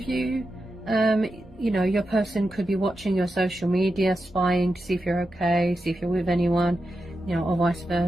you, you know, your person could be watching your social media, spying to see if you're okay, see if you're with anyone, you know, or vice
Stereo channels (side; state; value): both; normal; correlation 0.89